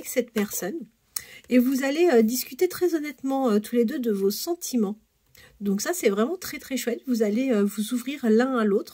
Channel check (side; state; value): both; identical; correlation 1.00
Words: cette personne. Et vous allez discuter très honnêtement tous les deux de vos sentiments. Donc ça, c'est vraiment très très chouette. Vous allez vous ouvrir l'un à